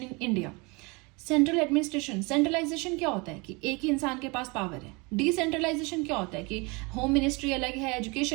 India. Central administration, centralization क्या होता है कि एक ही इंसान के पास पावर है। डिसेंट्रलाइजेशन क्या होता है कि होम मिनिस्ट्री अलग है,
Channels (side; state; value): left; quieter; 27.8 dB